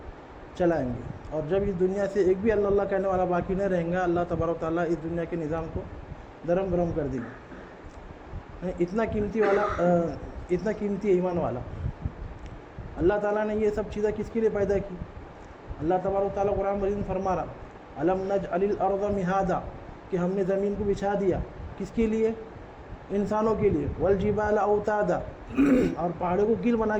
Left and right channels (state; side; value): identical; both; correlation 1.00